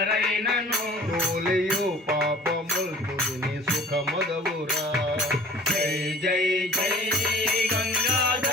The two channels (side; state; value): both; normal; correlation 0.47